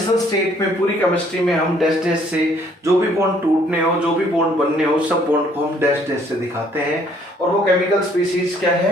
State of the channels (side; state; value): both; normal; correlation 0.63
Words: स्टेट में पूरी केमिस्ट्री में हम डैश डैश से जो भी बॉन्ड टूटने हो, जो भी बॉन्ड बनने हो, सब बॉन्ड को हम डैश डैश से दिखाते हैं। और वो केमिकल स्पीसीज क्या